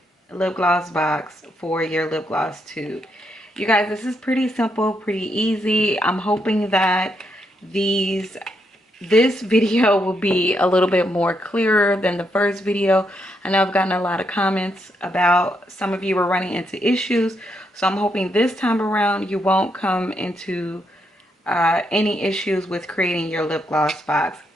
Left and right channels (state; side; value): normal; both; correlation 0.79